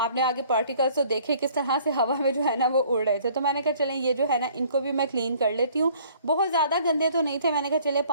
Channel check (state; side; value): inverted; both; correlation -0.57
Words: आगे पार्टिकल्स तो देखे किस तरह से हवा में जो है ना वो उड़ रहे थे। तो मैंने कहा चलें ये जो है ना इनको भी मैं क्लीन कर लेती हूँ। बहुत ज़्यादा गंदे तो नहीं थे, मैंने कहा चले